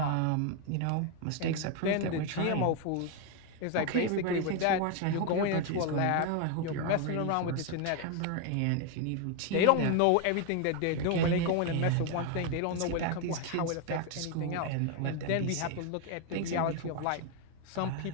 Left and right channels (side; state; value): both; different; correlation 0.01